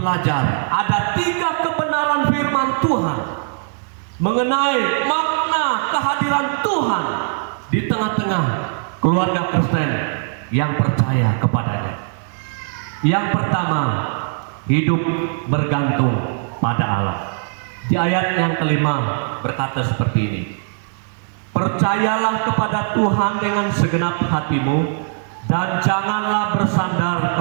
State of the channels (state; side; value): silent; left; digital silence